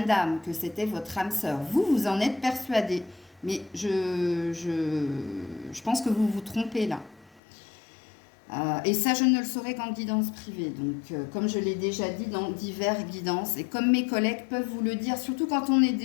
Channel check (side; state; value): right; drops out; at 7.4 s